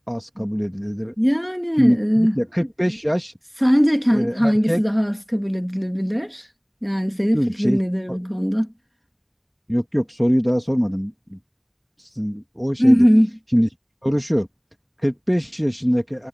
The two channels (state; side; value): identical; both; correlation 1.00